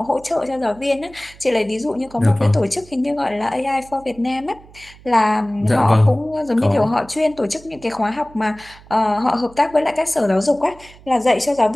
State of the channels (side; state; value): right; noise; hum, 23 dB below the sound